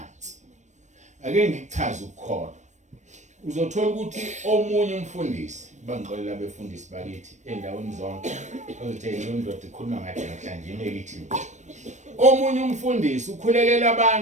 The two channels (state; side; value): late; left; 0.34 ms